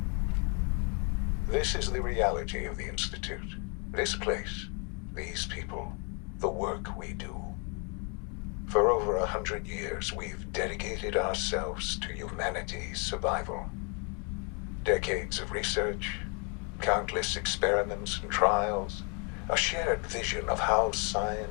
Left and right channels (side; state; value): right; quieter; 35.5 dB